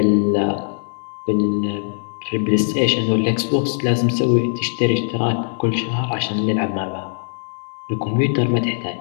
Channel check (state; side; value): silent; right; 62 dB below the other